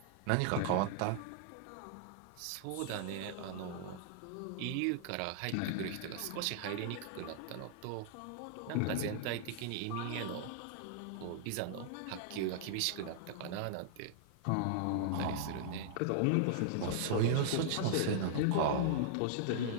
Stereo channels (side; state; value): both; different; correlation -0.01